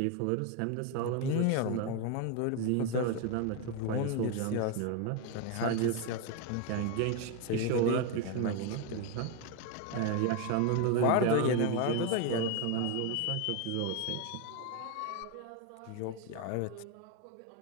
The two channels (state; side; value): different; both; correlation 0.02